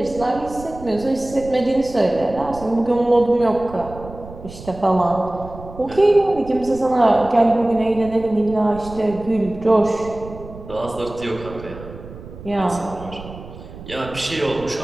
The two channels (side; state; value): right; noise; rumble, 15 dB below the sound